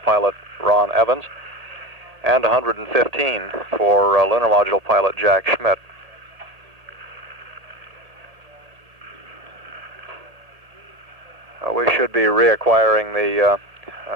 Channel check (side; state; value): left; late; 1.7 ms